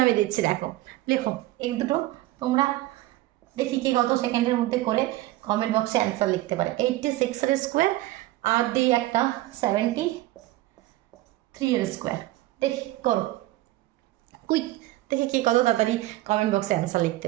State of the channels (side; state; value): left; quieter; 17.2 dB